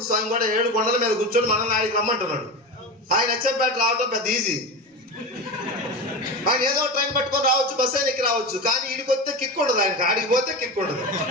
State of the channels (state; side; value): normal; both; correlation 0.23